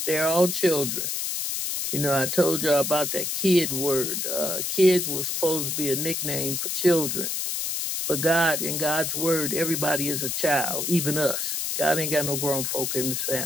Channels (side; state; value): left; noise; hiss, 1 dB below the sound